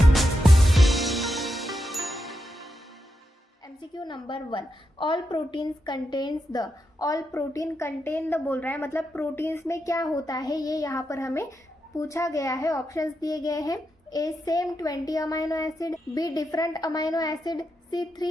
MCQ number 1, all proteins contains the. All protein contain the बोल रहा है, मतलब प्रोटीन्स में क्या होता है ये यहाँ पर हमें पूछा गया है। ऑप्शंस दिए गए हैं। A same 20 amino acid, B different amino acid, C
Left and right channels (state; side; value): normal; both; correlation 0.86